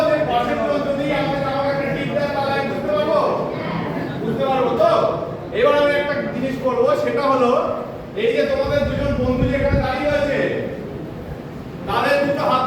যে পাশের জন যদি আমাকে একটা টিপ দেয় তাহলে আমি বুঝতে পারবো তো। এবার আমি একটা জিনিস করবো, সেটা হলো এই যে তোমাদের দুজন বন্ধু যেখানে দাঁড়িয়ে আছে তাদের দুটো হাত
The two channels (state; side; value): identical; both; correlation 1.00